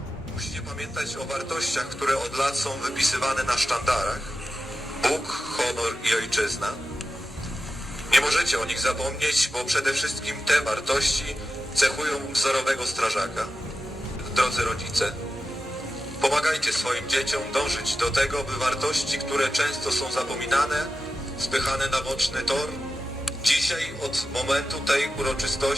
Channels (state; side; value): normal; both; correlation 0.93